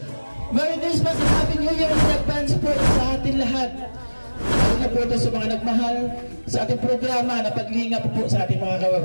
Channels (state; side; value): inverted; both; correlation -1.00